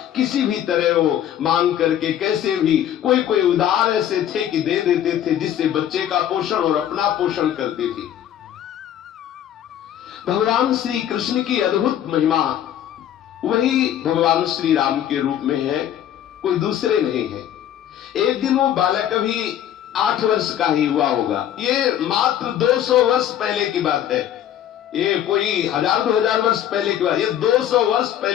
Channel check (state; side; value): quieter; right; 10.8 dB